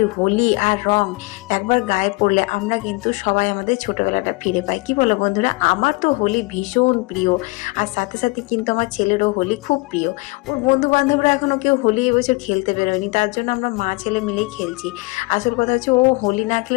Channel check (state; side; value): quieter; right; 25.8 dB